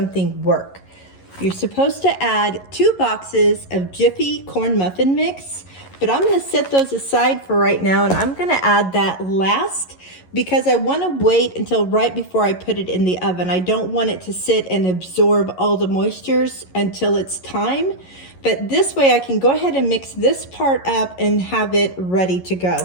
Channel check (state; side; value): late; right; 11 ms